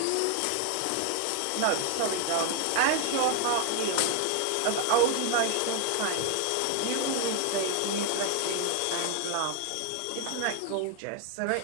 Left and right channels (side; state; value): both; different; correlation 0.00